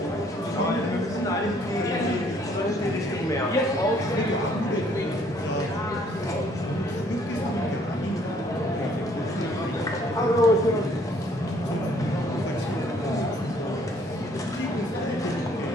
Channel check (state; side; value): normal; both; correlation 0.62